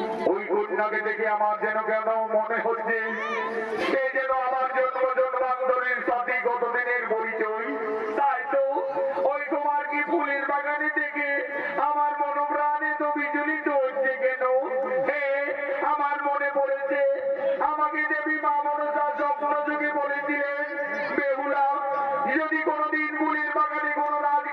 ওই কন্যাকে দেখে আমার যেন কেন মনে হচ্ছে সে যেন আমার জন্ম জন্মান্তরের সাথে কতদিনের পরিচয়। তাই তো ওই তোমার কি ফুলের বাগানে থেকে আমার মনোপ্রাণে তো বিচলিত হচ্ছে কেন? হে, আমার মনে পড়েছে আমাকে দেবী মা মনসা স্বপ্ন যুগে বলেছিলেন, বেহুলা যদি কোনোদিন ফুলের বাগানে কোনো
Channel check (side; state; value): both; identical; correlation 1.00